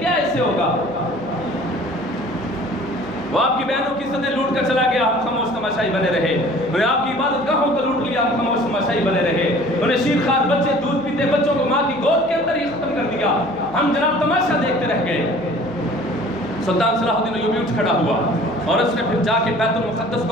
اس سے ہوگا؟ وہ آپ کی بہنوں کی عزتیں لوٹ کر چلا گیا، ہم خاموش تماشائی بنے رہے. انہیں آپ کی عبادت گاہوں کو لوٹ لیا، ہم خاموش تماشائی بنے رہے. انہیں شیرخوار بچے دودھ پیتے بچوں کو ماں کی گود کے اندر ہی ختم کر دیا، ہم جناب تماشا دیکھتے رہ گئے. سلطان صلاح الدین ایوبی اٹھ کھڑا ہوا اور اس نے پھر جا کے بیت المقدس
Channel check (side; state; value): left; noise; hum, 26 dB below the sound